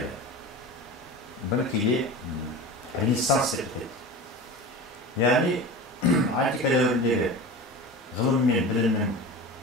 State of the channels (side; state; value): both; normal; correlation 0.31